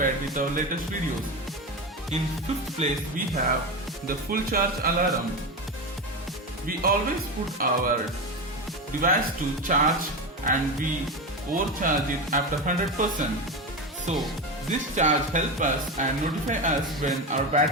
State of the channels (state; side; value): normal; both; correlation 0.19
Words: with our latest videos. In 5th place we have the full charge alarm. We always put our device to charge and we overcharge it after 100%. So this charge helps us and notify us when our